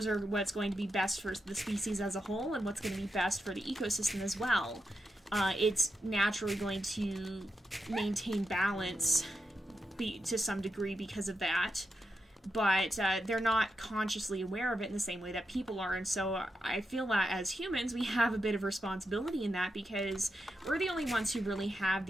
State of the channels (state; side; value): normal; both; correlation 0.86